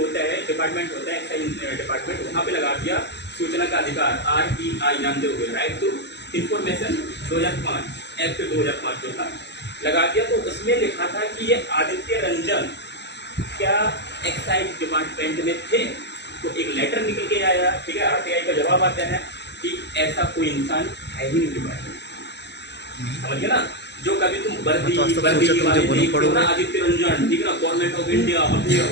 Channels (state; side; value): late; right; 0.50 ms